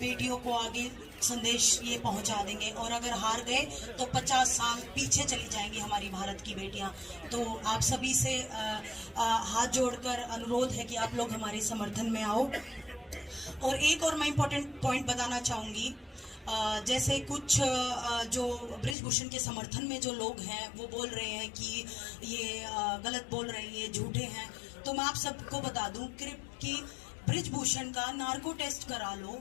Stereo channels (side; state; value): right; drops out; at 18.9 s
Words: को आगे संदेश ये पहुंचा देंगे, और अगर हार गए तो 50 साल पीछे चली जाएंगी हमारी भारत की बेटियां। तो आप सभी से हाथ जोड़कर अनुरोध है कि आप लोग हमारे समर्थन में आओ। और एक और मैं इम्पोर्टेंट पॉइंट बताना चाहूँगी, जैसे कुछ जो बृजभूषण के समर्थन में जो लोग हैं वो बोल रहे हैं कि ये गलत बोल रहे हैं, ये झूठे हैं। तो मैं आप सबको बता दूं कि बृजभूषण का नार्को टेस्ट करा लो